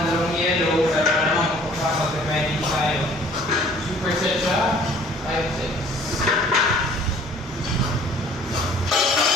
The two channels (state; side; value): normal; both; correlation 0.54